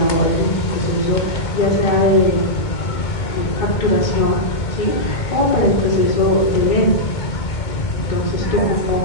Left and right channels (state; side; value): late; right; 2.2 ms